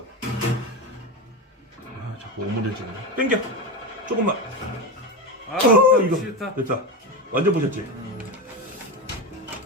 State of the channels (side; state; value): both; normal; correlation 0.18